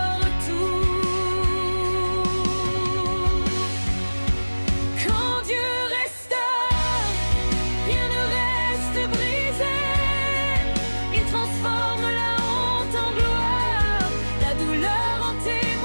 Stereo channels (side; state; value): both; inverted; correlation -1.00